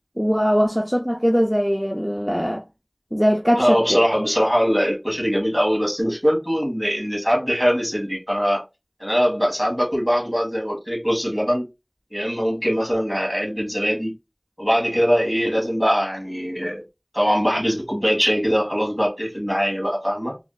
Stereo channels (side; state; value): both; identical; correlation 1.00